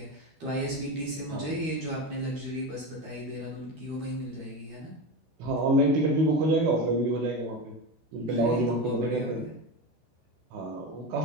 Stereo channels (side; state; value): left; late; 13 ms